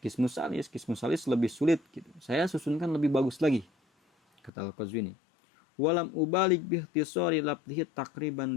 Qismus Salis. Qismus Salis lebih sulit gitu. Saya susunkan lebih bagus lagi, kata Al-Qazwini. Walam ubalik bihtisari labdihi takriban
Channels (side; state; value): right; drops out; at 4.5 s